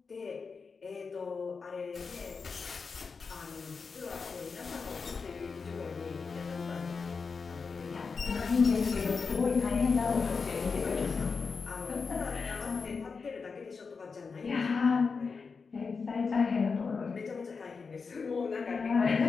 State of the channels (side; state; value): right; quieter; 5.0 dB